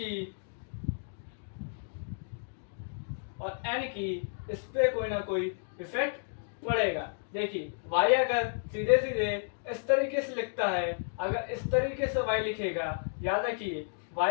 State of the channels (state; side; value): silent; right; digital silence